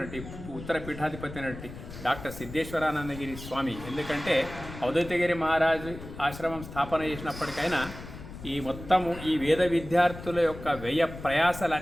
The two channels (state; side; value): noise; left; rumble, 13 dB below the sound